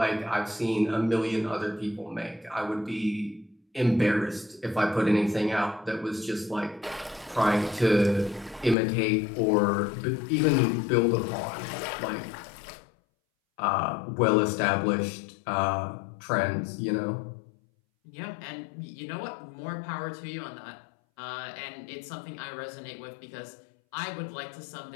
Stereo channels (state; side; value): drops out; right; at 8.8 s